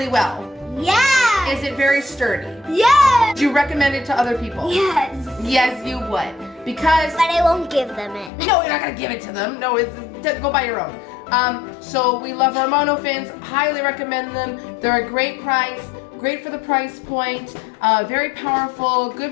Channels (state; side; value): drops out; right; at 8.3 s